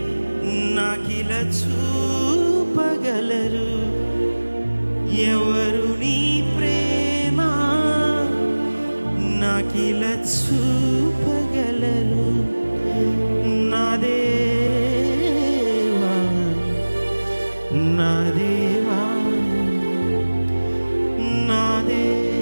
నాకిలా చూపగలరు, ఎవరు నీ ప్రేమ నాకిలా చూపగలరు. నా దేవా నా దేవా నా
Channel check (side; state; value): both; inverted; correlation -1.00